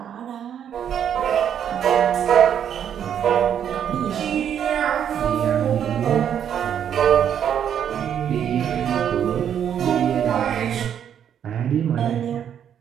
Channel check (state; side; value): quieter; left; 9.0 dB